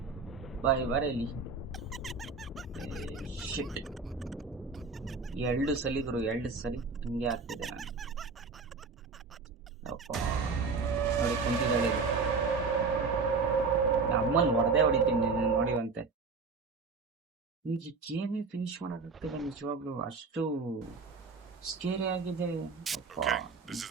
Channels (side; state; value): left; quieter; 4.5 dB